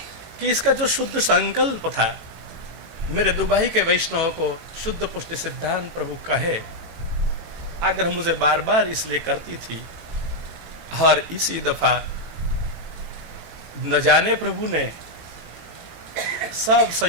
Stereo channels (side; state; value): left; late; 18 ms